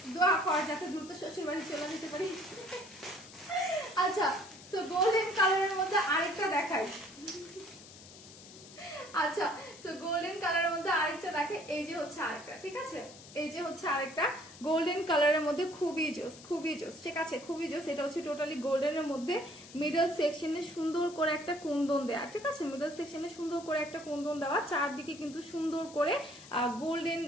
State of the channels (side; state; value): left; noise; hiss, 18 dB below the sound